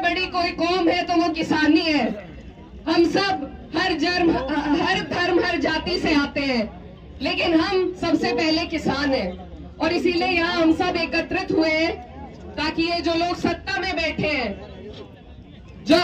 कोई कौम है तो वो किसानी है। हम सब हर धर्म हर जाति से आते हैं, लेकिन हम सबसे पहले किसान हैं और इसीलिए यहाँ हम सब एकत्रित हुए हैं ताकि ये जो लोग सत्ता में बैठे हैं, जो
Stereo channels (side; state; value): both; identical; correlation 1.00